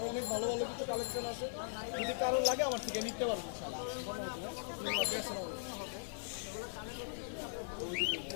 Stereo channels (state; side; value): silent; right; digital silence